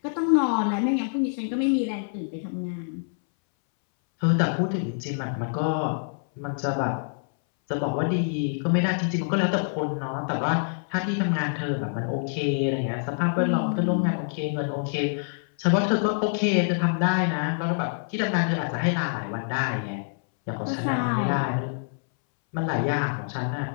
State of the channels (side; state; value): right; silent; 61 dB below the other